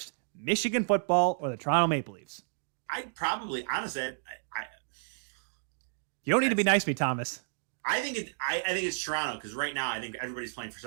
Michigan football or the Toronto Maple Leafs? I'd probably, honestly, You don't need to be nice to me, Thomas. I think it's Toronto because right now I think everybody's playing for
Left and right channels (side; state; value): left; silent; digital silence